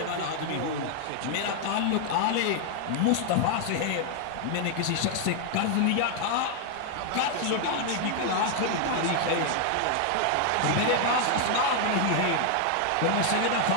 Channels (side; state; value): both; different; correlation 0.00